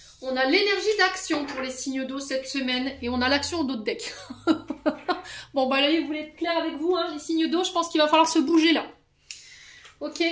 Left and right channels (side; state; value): both; identical; correlation 1.00